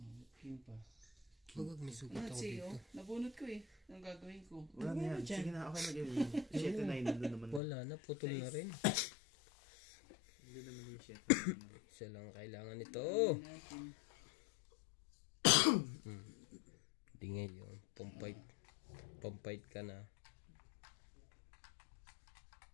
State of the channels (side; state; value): right; drops out; at 7.6 s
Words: King pa. Huwag may sugat Ano ako siya, dito. nabunot ko eh. Ang gagawin ko. Wala na yan. Sige na, okay na gawin. 7 na yun naman. Wala na, putol na rin. Hindi naman yung 7. Isa lang kailangan nito. Gawin natin. Hindi ngayon. Pampait ka na.